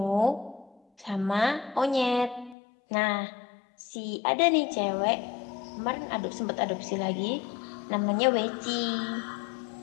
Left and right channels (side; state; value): right; drops out; at 2.6 s